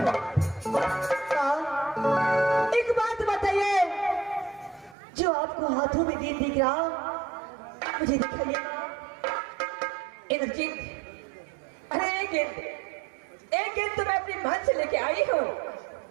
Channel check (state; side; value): drops out; left; at 5.0 s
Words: हाँ, एक बात बताइए, जो आपको हाथों में गेंद दिख रहा मुझे दिखाइए। इंद्रजीत, अरे एक गेंद तो मैं अपनी महल से लेके आई हूँ।